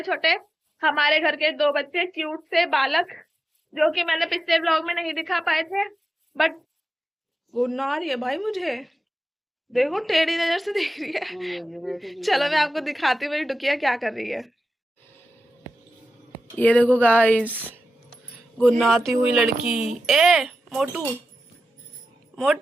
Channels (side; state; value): both; normal; correlation 0.92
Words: छोटे हमारे घर के 2 बच्चे, क्यूट से बालक, जो कि मैंने पिछले ब्लॉग में नहीं दिखा पाए थे। बट गुन्ना आ रही है भाई मुझे, देखो टेढ़ी नजर से देख रही है। चलो मैं आपको दिखाती हूँ मेरी डुकिया क्या कर रही है। ये देखो गाइस, गुन्नाती हुई लड़की। ए मोटू,